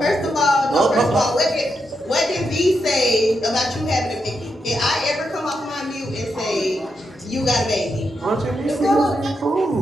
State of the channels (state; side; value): normal; both; correlation 0.83